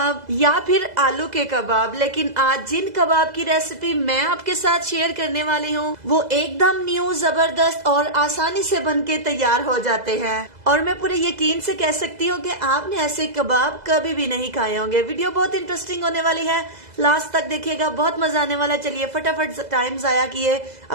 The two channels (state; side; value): late; left; 2.0 ms